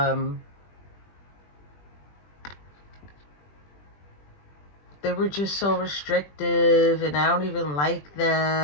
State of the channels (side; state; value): right; late; 20 ms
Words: they were just so restrictive, and I don't even like